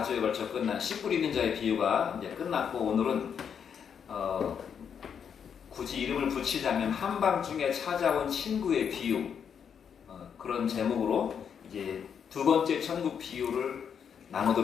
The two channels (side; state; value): right; quieter; 7.5 dB